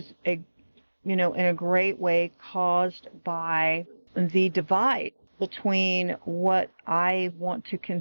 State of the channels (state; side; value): inverted; both; correlation -1.00